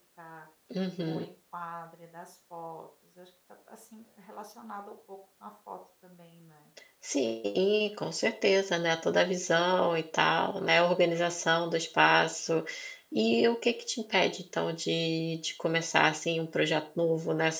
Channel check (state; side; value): identical; both; correlation 1.00